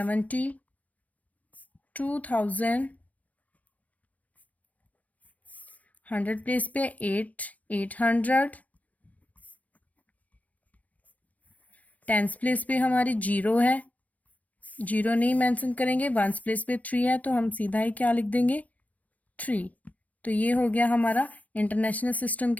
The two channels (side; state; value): right; late; 0.074 ms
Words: 100 प्लेस पे 800। 10 प्लेस पे हमारी 0 है, 0 नहीं मेंशन करेंगे। 1 प्लेस पे 3 है, तो हम सीधा ही क्या लिख देंगे 3। तो ये हो गया हमारा इंटरनेशनल सिस्टम